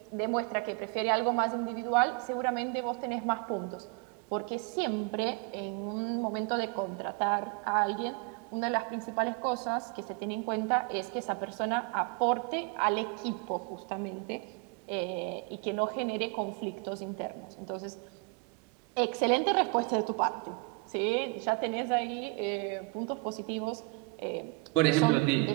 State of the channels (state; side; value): quieter; left; 28.1 dB